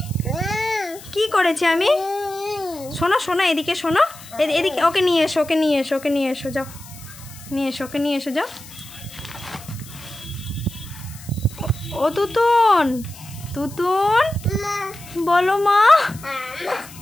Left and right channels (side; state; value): left; noise; hiss, 18 dB below the sound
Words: কি করেছি আমি? শোনো শোনো, এদিকে শোনো, এদিকে। ওকে নিয়ে এসো, ওকে নিয়ে এসো, ওকে নিয়ে এসো, যাও নিয়ে এসো, ওকে নিয়ে এসো, যাও। ও তুতুন, তুতুন বলো মা।